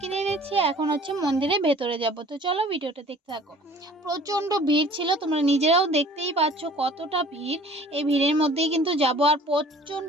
নিচ্ছি। এখন হচ্ছে মন্দিরের ভেতরে যাব। তো চলো ভিডিওটা দেখতে থাকো। প্রচণ্ড ভিড় ছিল, তোমরা নিজেরাও দেখতেই পাচ্ছ কতটা ভিড়। এই ভিড়ের মধ্যেই কিন্তু যাব। আর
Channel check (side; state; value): both; normal; correlation 0.50